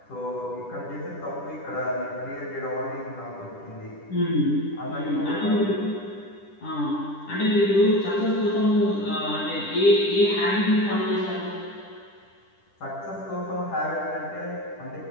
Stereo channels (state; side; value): late; right; 10 ms